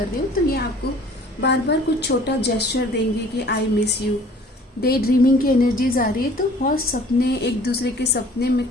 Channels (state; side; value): normal; both; correlation 0.52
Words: रहे हो, तो ये आपको बार बार कुछ छोटा जेस्चर देंगे कि I miss you. Day dreaming की एनर्जीज आ रही है, तो बहुत सपने, एक दूसरे के सपने में